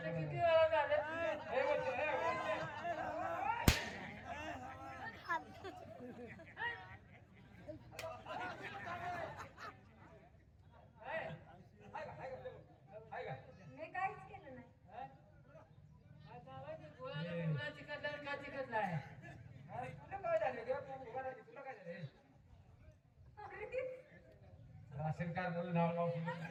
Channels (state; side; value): identical; both; correlation 1.00